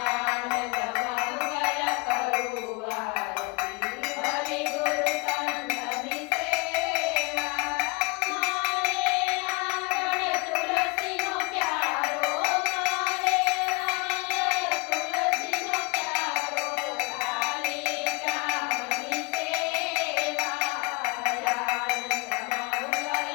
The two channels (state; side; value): quieter; right; 28.8 dB